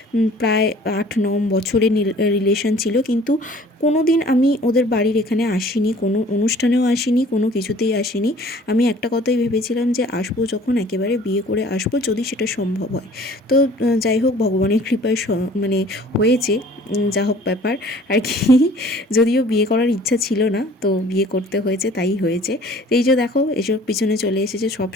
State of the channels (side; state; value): both; normal; correlation 0.51